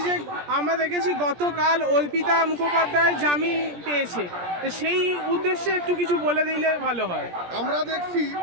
যে আমরা দেখেছি গতকাল অর্পিতা মুখোপাধ্যায় জামিন পেয়েছে, তো সেই উদ্দেশ্যে একটু কিছু বলে দিলে ভালো হয়। আমরা দেখছি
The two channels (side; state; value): left; late; 17 ms